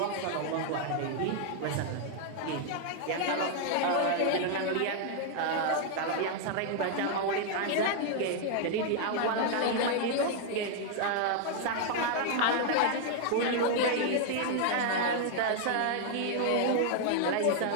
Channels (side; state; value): both; different; correlation 0.00